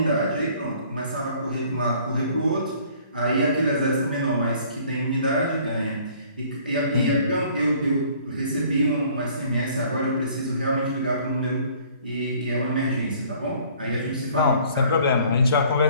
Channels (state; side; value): inverted; both; correlation -0.56